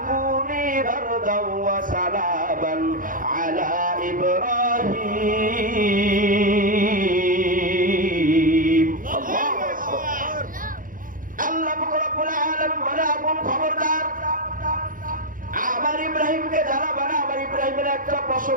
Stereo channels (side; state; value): left; late; 0.40 ms